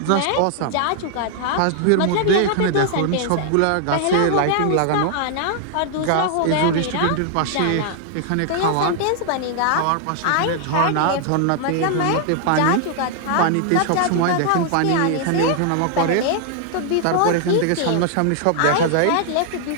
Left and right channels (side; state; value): both; different; correlation 0.00